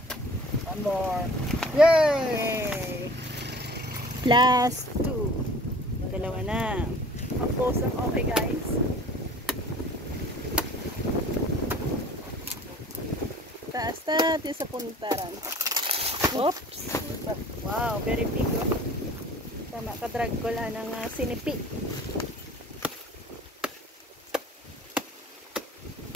Yay! +2. Dalawa na. Tapos ang okay guys. Taas yung sa puntaran. Oops! Wow, very big. Tama, kadrag ko lang ng sinipi.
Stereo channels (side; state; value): both; normal; correlation 0.47